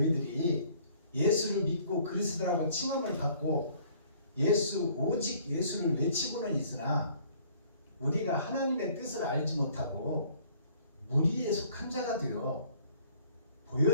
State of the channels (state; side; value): inverted; both; correlation -0.57